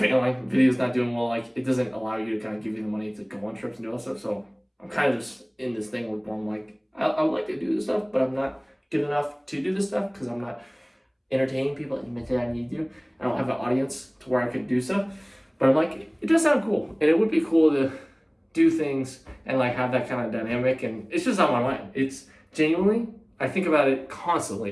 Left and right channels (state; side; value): identical; both; correlation 1.00